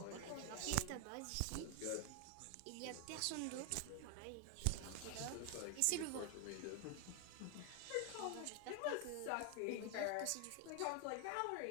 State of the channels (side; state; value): both; different; correlation 0.00